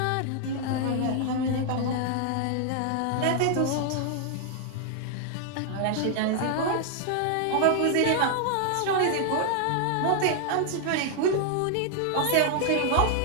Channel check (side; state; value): both; different; correlation 0.00